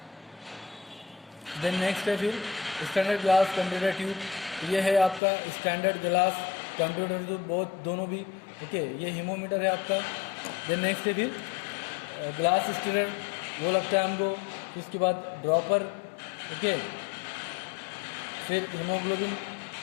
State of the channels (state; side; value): drops out; right; at 5.2 s